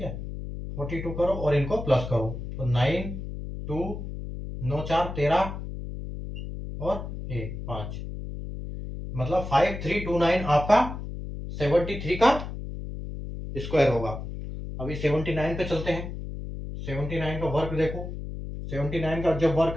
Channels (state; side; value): noise; left; hum, 7 dB below the sound